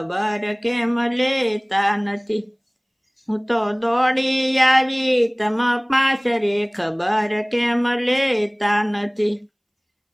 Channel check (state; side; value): identical; both; correlation 1.00